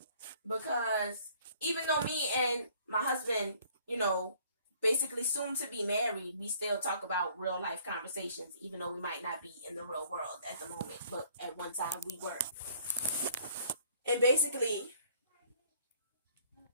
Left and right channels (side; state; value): both; inverted; correlation -0.59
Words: Because even though me and my husband, basically soon to be married, we still talk about real life conversations, even though we might not be in the real world at the moment, but at one time we were. And basically,